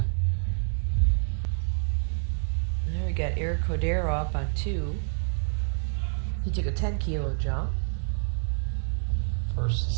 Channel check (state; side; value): silent; left; 60 dB below the other